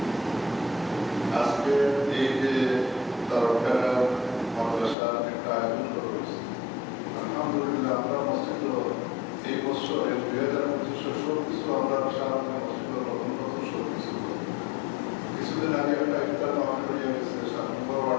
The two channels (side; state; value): right; drops out; at 5.0 s